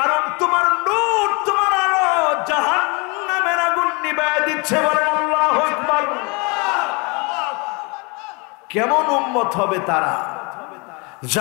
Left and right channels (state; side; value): quieter; right; 29.9 dB